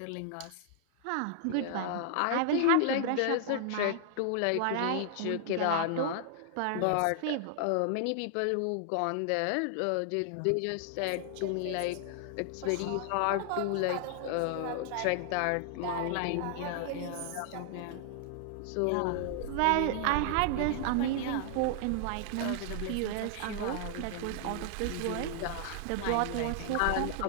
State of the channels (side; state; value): both; different; correlation 0.00